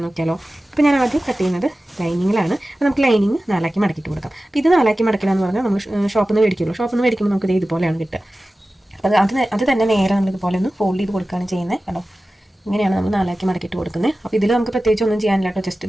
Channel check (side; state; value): both; normal; correlation 0.95